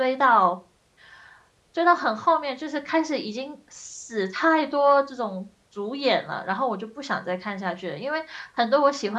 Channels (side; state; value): both; identical; correlation 1.00